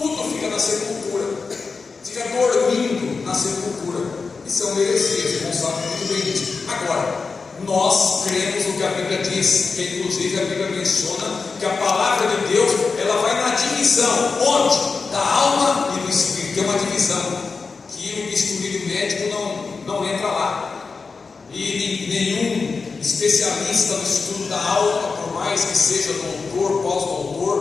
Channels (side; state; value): right; quieter; 4.6 dB